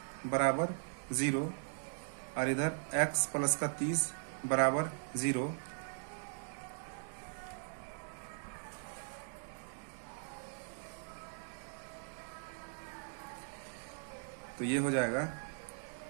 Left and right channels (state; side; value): silent; left; digital silence